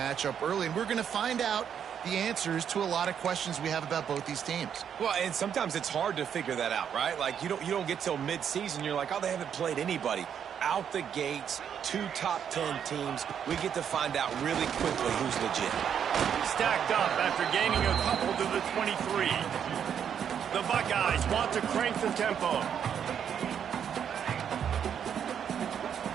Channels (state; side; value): quieter; left; 8.3 dB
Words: early, and we're going to find out the answers to a lot of questions we have about both these teams. Well, and sometimes it's hard to figure that out, right? Like, you don't get till mid-season, you're like, oh, they haven't played anybody. Out the gates, 2 top 10 teams. We get to find out really quickly who's legit. Stacked up after gaining a couple to the 23. The Buckeyes want to crank the tempo.